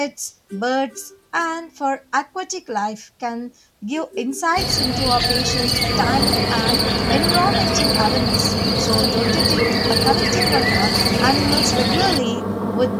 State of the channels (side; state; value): both; identical; correlation 1.00